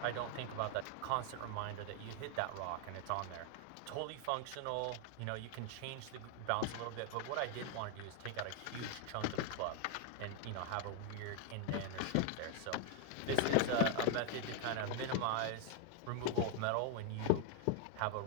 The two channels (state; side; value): different; both; correlation 0.00